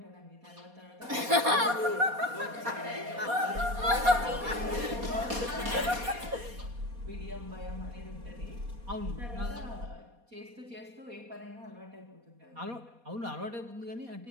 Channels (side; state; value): left; late; 4.2 ms